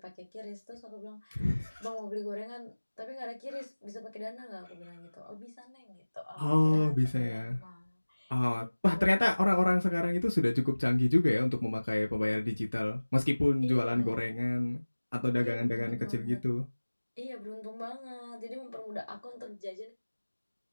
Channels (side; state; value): both; inverted; correlation -1.00